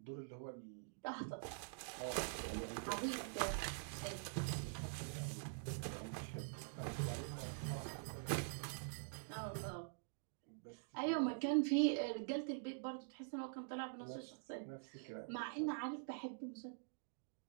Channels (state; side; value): silent; left; digital silence